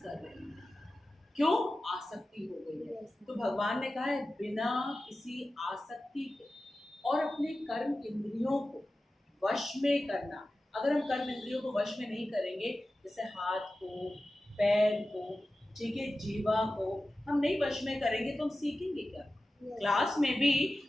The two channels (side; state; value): both; normal; correlation 0.94